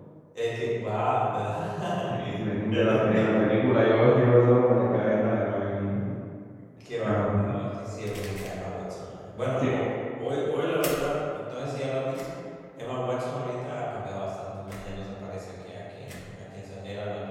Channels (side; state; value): both; identical; correlation 1.00